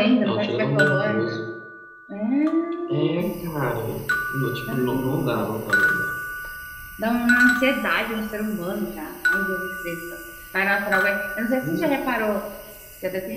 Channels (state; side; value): identical; both; correlation 1.00